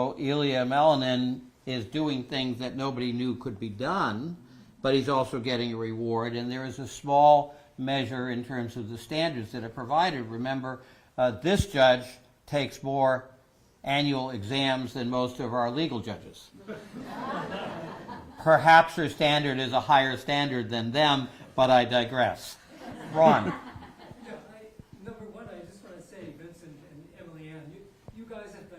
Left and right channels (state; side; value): identical; both; correlation 1.00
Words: Ilya Melinin is doing things that nobody knew could be done, but he's also getting a reward, and there is a small measure in terms of the standards that are provided. Remember, this judge takes more annual exams than most of our legal judges. Perhaps her standard is a higher standard than them, but I digress. Ron. Number one, I just want to say, Vincent and Emily Ann, you guys have